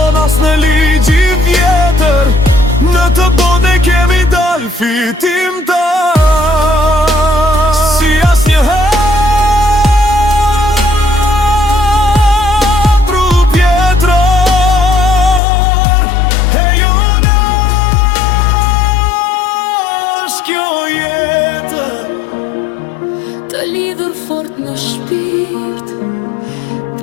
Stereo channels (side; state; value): right; drops out; at 15.4 s